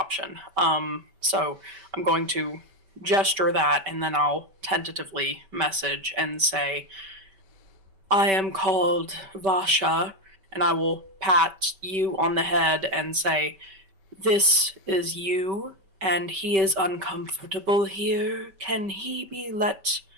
So I'm going to gesture that, and then I'll tentatively message and say, I am called Vasha, and I will pat you on the head and say, this is you, and he is uncomfortable here. Can he be let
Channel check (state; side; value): late; left; 5.2 ms